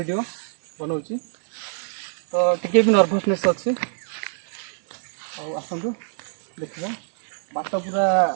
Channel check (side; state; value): left; silent; digital silence